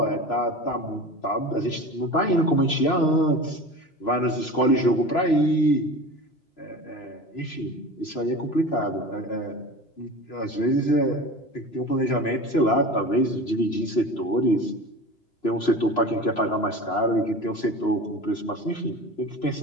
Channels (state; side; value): late; right; 3.0 ms